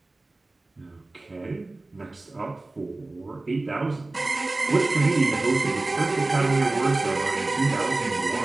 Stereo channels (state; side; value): quieter; left; 3.0 dB